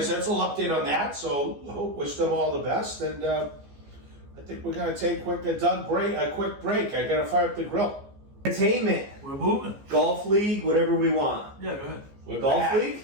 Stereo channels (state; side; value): late; left; 14 ms